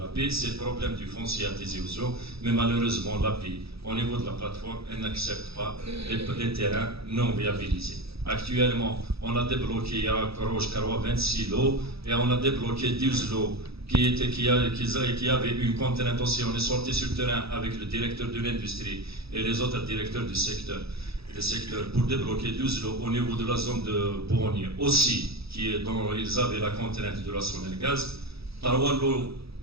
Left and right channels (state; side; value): late; left; 0.77 ms